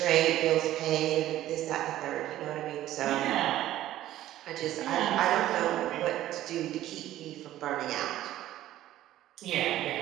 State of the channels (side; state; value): left; quieter; 13.8 dB